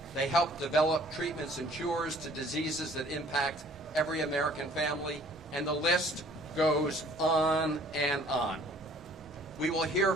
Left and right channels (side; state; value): both; normal; correlation 0.55